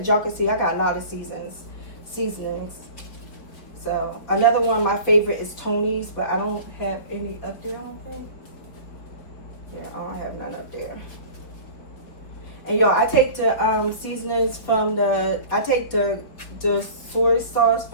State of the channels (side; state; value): right; late; 4.4 ms